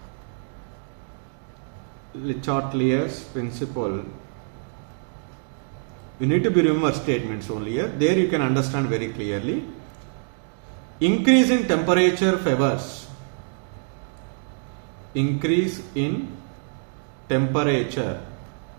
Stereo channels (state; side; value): silent; left; digital silence